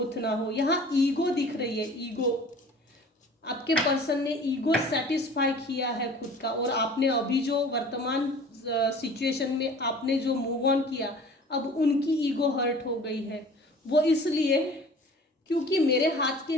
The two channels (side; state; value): both; normal; correlation 0.45